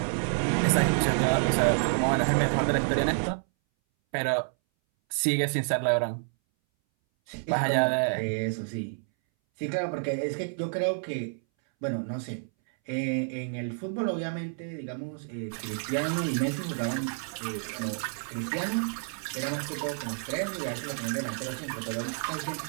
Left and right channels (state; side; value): silent; left; 58 dB below the other